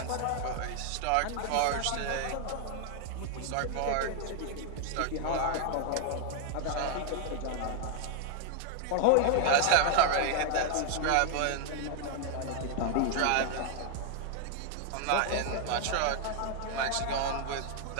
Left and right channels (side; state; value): both; different; correlation 0.00